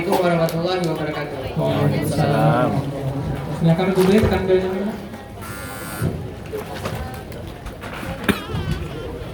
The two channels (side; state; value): both; identical; correlation 1.00